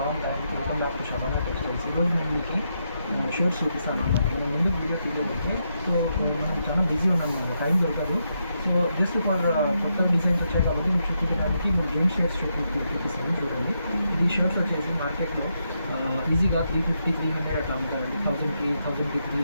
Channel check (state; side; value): inverted; both; correlation -0.82